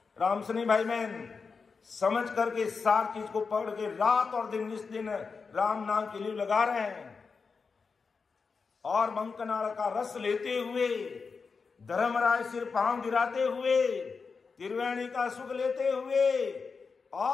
रामसनी भाई मैन समझ करके सार चीज को पकड़ के रात और दिन इस दिन राम नाम के लिए लगा रहे हैं और मंकनाल का रस लेते हुए, धर्मराय सिर पांव गिराते हुए, त्रिवेणी का सुख लेते हुए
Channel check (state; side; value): quieter; right; 5.0 dB